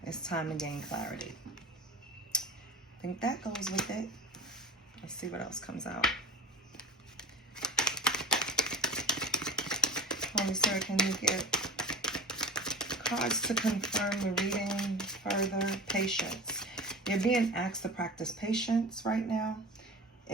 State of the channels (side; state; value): both; normal; correlation 0.34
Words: It's time to gain clarity. I think that goes with it. Let's see what else comes out. Holy Spirit, can you get cards to confirm the reading further? Patience. You're being asked to practice patience right now.